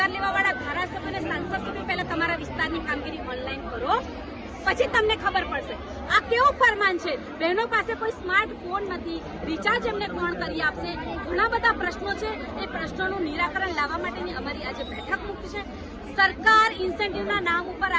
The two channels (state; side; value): identical; both; correlation 1.00